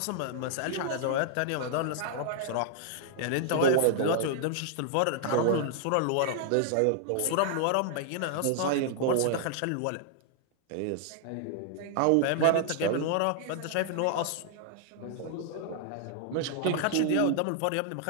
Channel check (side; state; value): both; different; correlation 0.00